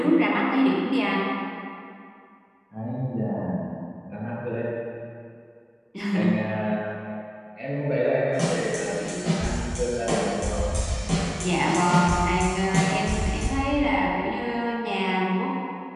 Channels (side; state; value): both; identical; correlation 1.00